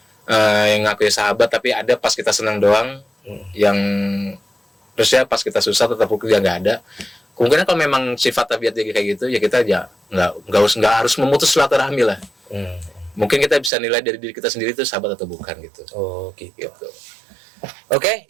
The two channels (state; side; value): drops out; left; at 13.7 s